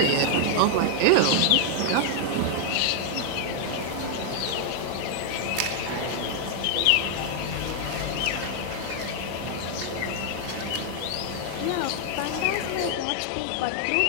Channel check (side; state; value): both; different; correlation 0.00